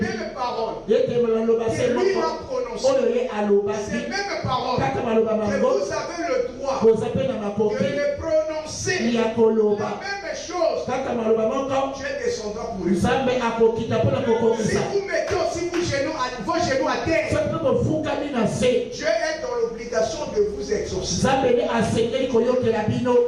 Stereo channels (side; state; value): both; identical; correlation 1.00